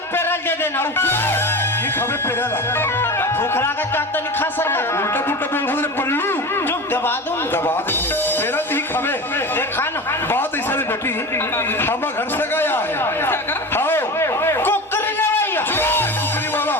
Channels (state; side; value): normal; both; correlation 0.29